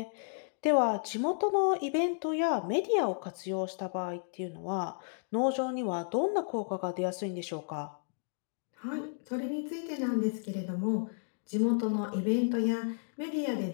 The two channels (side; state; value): right; silent; digital silence